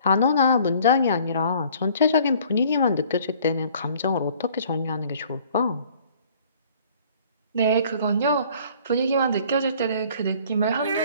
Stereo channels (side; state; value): both; inverted; correlation -0.55